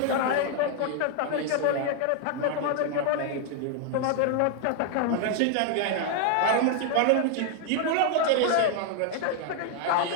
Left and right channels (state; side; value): different; both; correlation 0.00